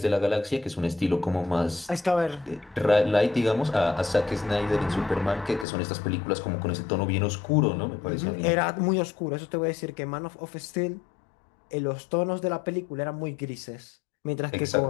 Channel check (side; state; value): right; drops out; at 5.7 s